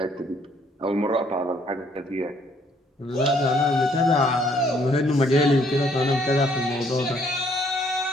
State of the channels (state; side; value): normal; both; correlation 0.65